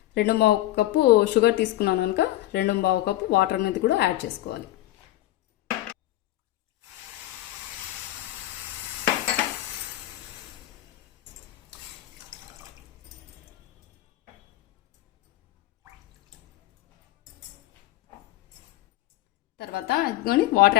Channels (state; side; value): quieter; right; 15.6 dB